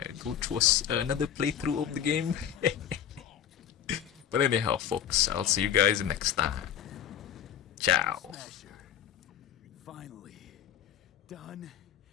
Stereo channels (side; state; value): right; quieter; 9.6 dB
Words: go through another playthrough of the game. But anyhow, folks, I'll see you guys next time. Ciao. Smasher. Finally. Done